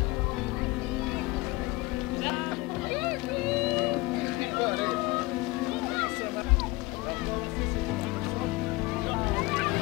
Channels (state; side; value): quieter; right; 21.8 dB